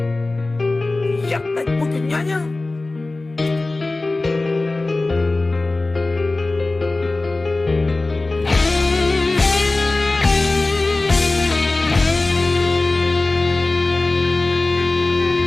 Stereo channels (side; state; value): right; quieter; 3.1 dB